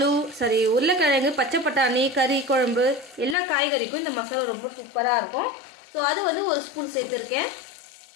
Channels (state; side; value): drops out; right; at 3.4 s